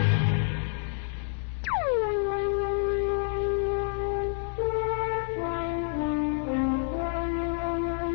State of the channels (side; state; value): right; silent; 59 dB below the other